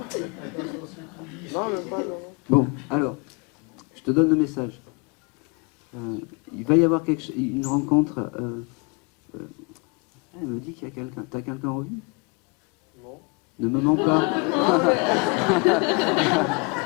Bon, alors, je te donne le message. Il va y avoir une rencontre Elle me dit qu'il y a quelqu'un. T'as quelqu'un en vue? Non. Ne me mens pas.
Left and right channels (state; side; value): quieter; right; 31.6 dB